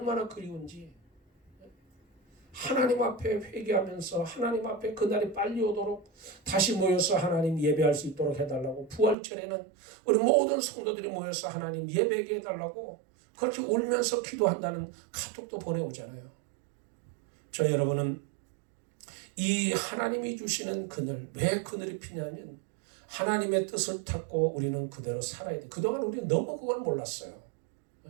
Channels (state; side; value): drops out; left; at 9.2 s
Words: 그리운지. 하나님 앞에 회개하면서 하나님 앞에 그날이 빨리 오도록 다시 모여서 하나님 예배할 수 있도록 해달라고, 부활절에는 우리 모든 성도들이 모여서 하나님 예배하게 해달라고 그렇게 울면서 기도한다는 카톡도 보내오잖아요. 저 여러분은 이 하나님이 주시는 그늘, 왜 그늘이 피냐면 하나님의 뜻을 찾고 우리는 그대로 살아야 돼. 그동안 우리는 너무 그걸 몰랐어요.